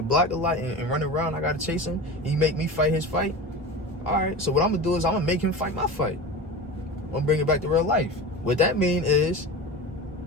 block a lot and run around. I gotta chase him. He make me fight his fight. All right, so what I'm gonna do is I'm gonna make him fight my fight. I'm gonna bring it back to real life. What that mean is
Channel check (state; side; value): normal; both; correlation 0.29